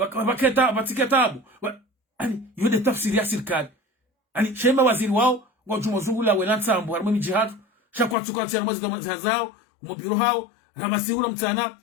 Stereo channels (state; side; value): drops out; right; at 8.2 s